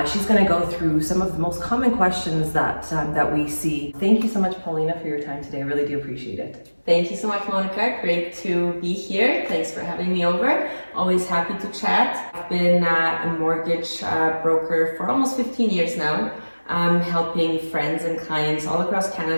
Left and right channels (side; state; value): both; inverted; correlation -1.00